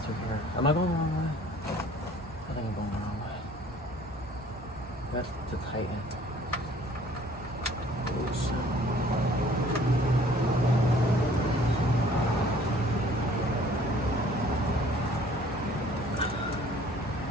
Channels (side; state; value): both; normal; correlation 0.55